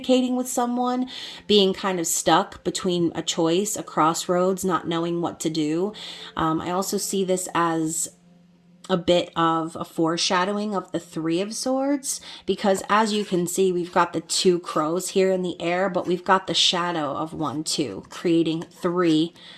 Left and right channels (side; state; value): both; identical; correlation 1.00